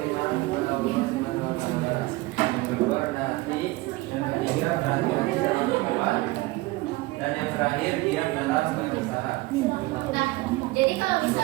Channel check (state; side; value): quieter; left; 20.8 dB